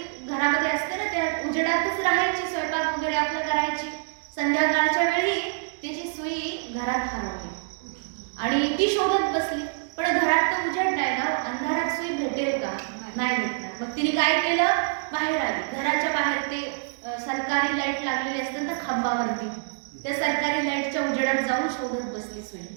घरामध्ये असते ना, त्या उजेडातच राहायची, स्वयंपाक वगैरे आपलं करायची। संध्याकाळच्या वेळी त्याची सुई घरात हरवली आणि ती शोधत बसली, पण घरात तर उजेड नाही ना, अंधारात सुई भेटेल का? नाही भेटणार। मग तिने काय केलं, बाहेर आली, घराच्या बाहेर ते सरकारी लाईट लागलेली असते ना खांबावरती, त्या सरकारी लाईटच्या उजेडात जाऊन शोधत बसली सुई।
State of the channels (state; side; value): silent; left; digital silence